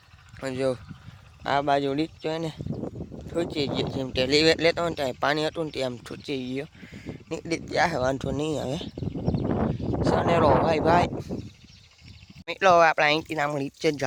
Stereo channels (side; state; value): both; identical; correlation 1.00